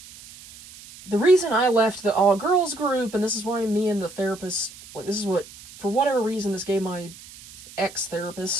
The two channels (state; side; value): noise; right; hiss, 19 dB below the sound